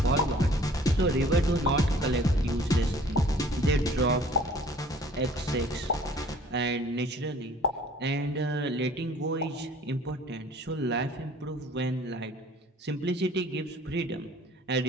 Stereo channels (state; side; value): normal; both; correlation 0.52